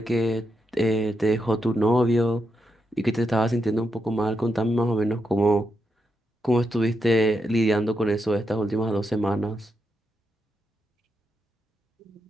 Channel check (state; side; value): normal; both; correlation 0.84